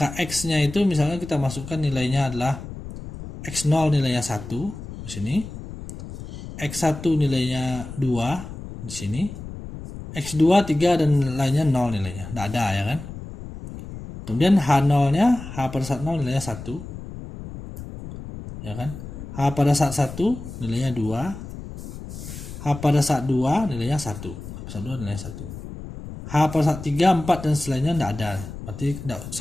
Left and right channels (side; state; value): left; noise; rumble, 11 dB below the sound